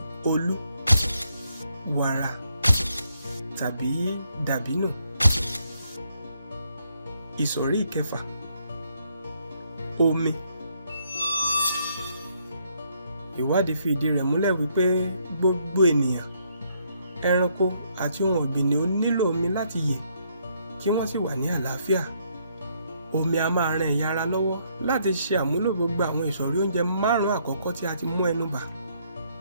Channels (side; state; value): both; inverted; correlation -0.72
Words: olú, wàrà tàbí dàbínù. Ìsọ̀rí ìkẹfà, omi. Ìwádìí fi ìdí rẹ̀ múlẹ̀ wípé gbogbo ènìyàn, ẹranko àti ohun ọ̀gbìn ni ó nílò omi láti yè kí wọ́n sì wà ní àlàáfíà. Omi a máa ran ẹ̀yà ara lọ́wọ́ láti ṣe àmúlò gbogbo àwọn ìsọ̀rí oúnjẹ 5 àkọ́kọ́ tí a ti mú ẹnu bà.